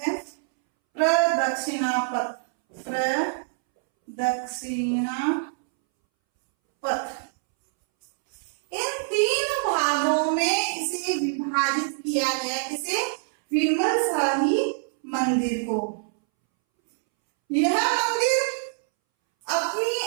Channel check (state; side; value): silent; left; 62 dB below the other